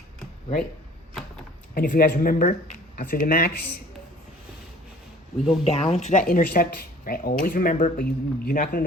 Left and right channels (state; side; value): normal; both; correlation 0.51